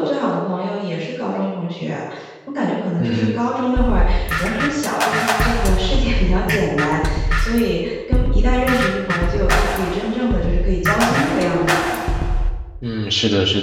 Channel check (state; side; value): identical; both; correlation 1.00